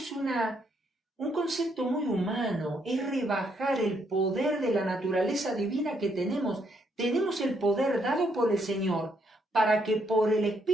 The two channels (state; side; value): normal; both; correlation 0.74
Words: un concepto muy humano, es rebajar el poder de la naturaleza divina que tenemos. Tenemos el poder dado por el Señor para que por el